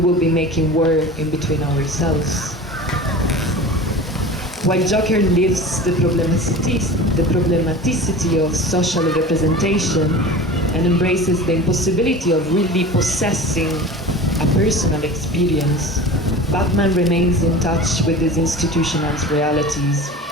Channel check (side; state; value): both; normal; correlation 0.36